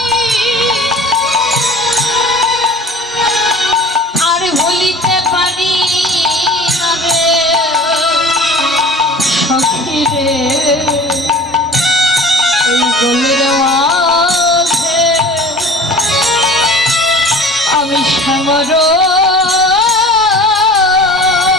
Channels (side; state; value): both; normal; correlation 0.42